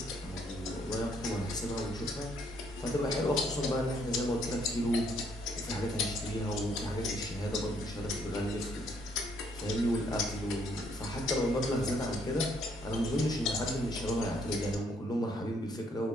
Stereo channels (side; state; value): both; normal; correlation 0.68